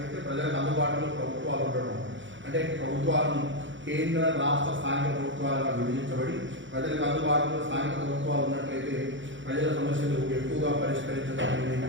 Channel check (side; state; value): left; late; 0.55 ms